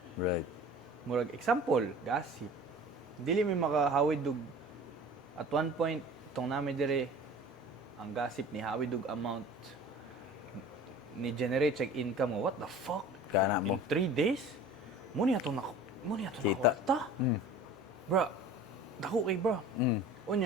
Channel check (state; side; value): normal; both; correlation 0.42